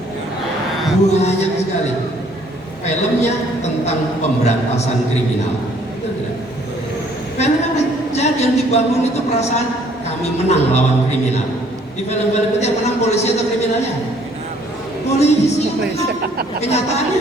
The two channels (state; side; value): normal; both; correlation 0.61